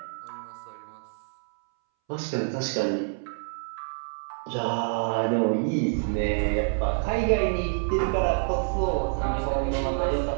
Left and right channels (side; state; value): left; silent; 60 dB below the other